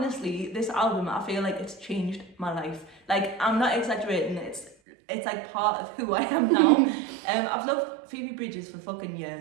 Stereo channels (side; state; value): left; drops out; at 4.8 s